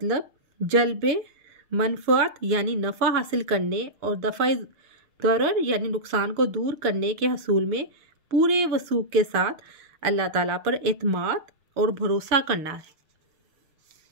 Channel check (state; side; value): late; left; 6.6 ms